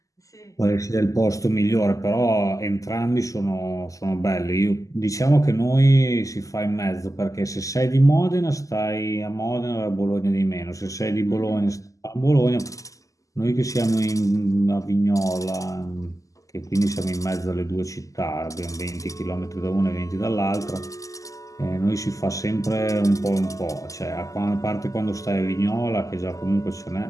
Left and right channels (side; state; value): right; late; 0.16 ms